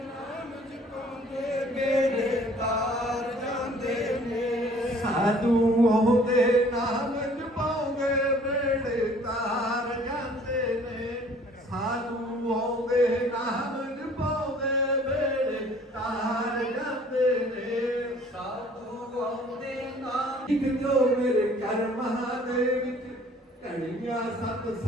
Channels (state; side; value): normal; both; correlation 0.55